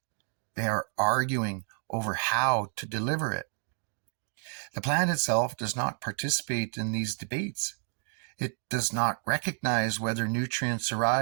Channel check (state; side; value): silent; left; 56 dB below the other